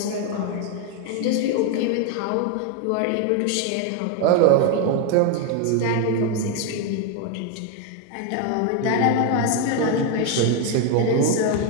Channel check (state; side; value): different; both; correlation 0.01